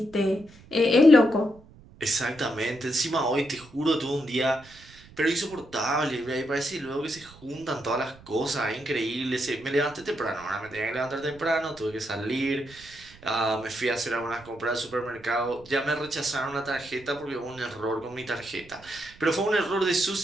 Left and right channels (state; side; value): noise; right; rumble, 23 dB below the sound